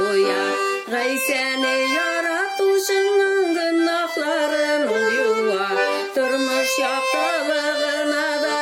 Gay seni yaratuşunun günahların ol yuva. Durmuş yaptığına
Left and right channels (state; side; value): identical; both; correlation 1.00